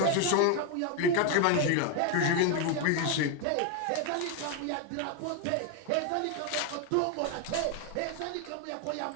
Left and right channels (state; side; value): different; both; correlation 0.01